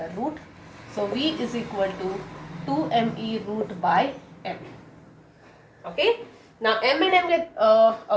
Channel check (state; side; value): identical; both; correlation 1.00